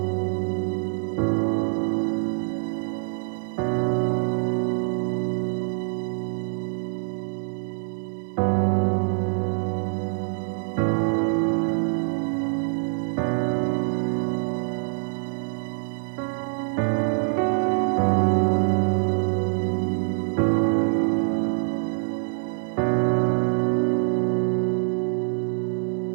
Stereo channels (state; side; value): silent; left; 62 dB below the other